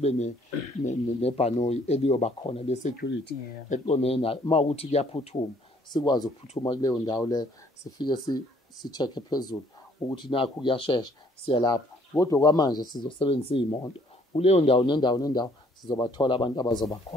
nebhanoyi eliyoba khona le-security eqondene nayo. Uma ukuthi kuyaphuthuma sikwazi ukuphuthuma kuleyo ndawo leyo, sifike si-check phezulu ukuthi nakho kuyashesha siya lapho. Kodwa kwamanje sizosebenzisa iy'moto kuleyo ndawo nendawo sizobathola abantu abazoba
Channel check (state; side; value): normal; both; correlation 0.62